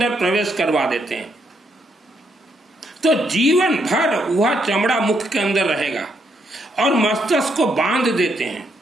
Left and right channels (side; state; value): both; normal; correlation 0.76